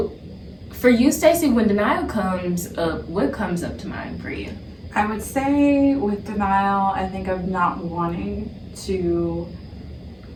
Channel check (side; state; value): both; identical; correlation 1.00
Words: for you, Stacey, when denial comes up, what comes up to mind for you? I would say with denial, I think of not wanting to